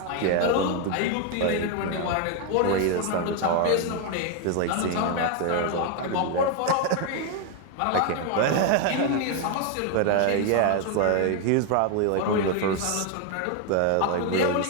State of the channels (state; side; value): different; both; correlation 0.01